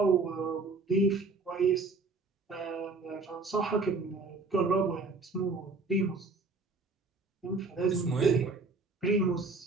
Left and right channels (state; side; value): quieter; left; 3.9 dB